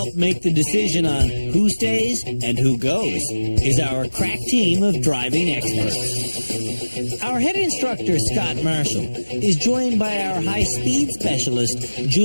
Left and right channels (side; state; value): both; inverted; correlation -1.00